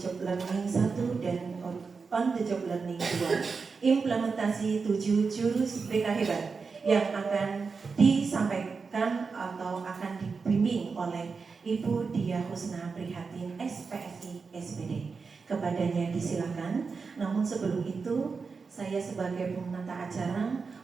learning 1 dan on the job learning 2, implementasi 7 jurus BK hebat yang akan disampaikan atau akan dibimbing oleh Ibu Dia Husna Prihatin SPSI SPD. Kepadanya disilakan. Namun sebelum itu, saya sebagai penata acara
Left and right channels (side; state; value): left; quieter; 4.9 dB